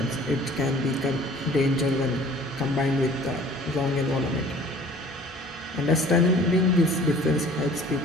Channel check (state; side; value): normal; both; correlation 0.50